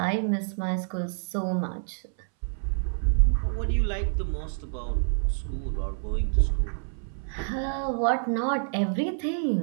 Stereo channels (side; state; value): left; silent; 60 dB below the other